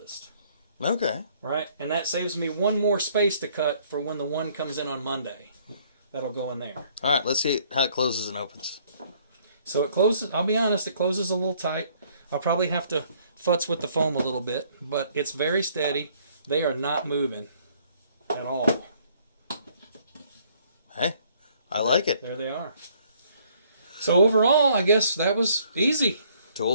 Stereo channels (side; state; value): both; inverted; correlation -0.63